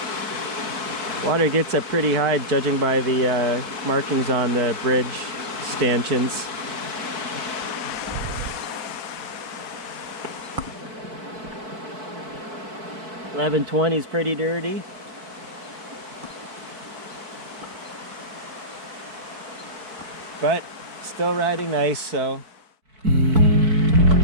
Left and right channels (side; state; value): left; late; 4.6 ms